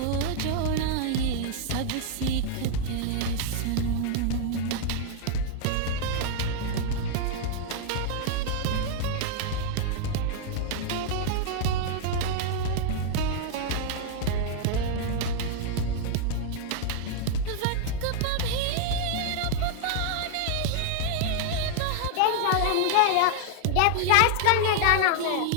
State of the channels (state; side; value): different; both; correlation -0.01